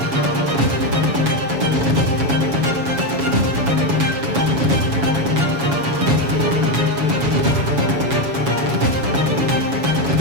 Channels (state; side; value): late; left; 7.1 ms